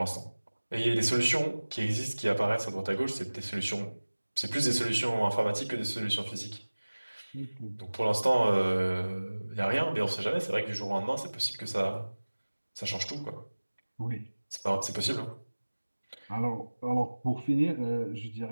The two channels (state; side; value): inverted; both; correlation -1.00